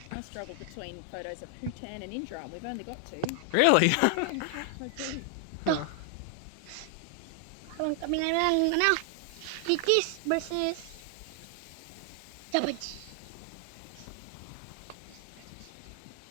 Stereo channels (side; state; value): both; different; correlation 0.00